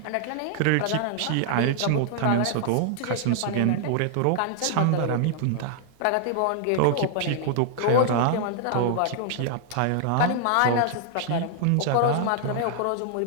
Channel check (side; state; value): both; different; correlation -0.01